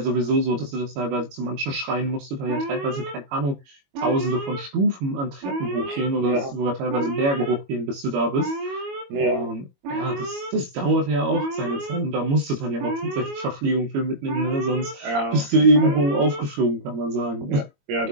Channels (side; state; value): left; late; 22 ms